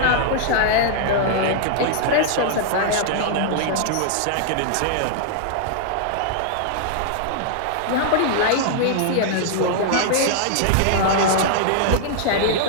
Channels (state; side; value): different; both; correlation -0.01